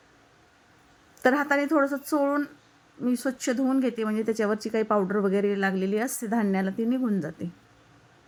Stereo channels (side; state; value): both; identical; correlation 1.00